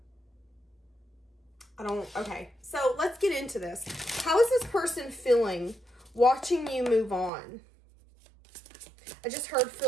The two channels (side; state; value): left; drops out; at 7.3 s